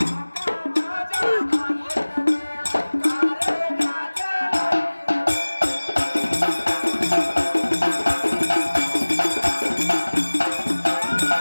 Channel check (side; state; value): both; inverted; correlation -1.00